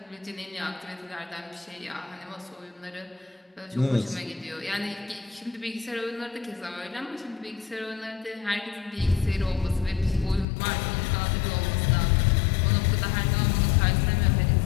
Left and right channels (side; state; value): right; drops out; at 10.5 s